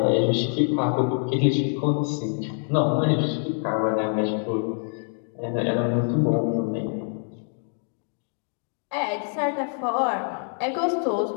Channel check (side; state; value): right; silent; 58 dB below the other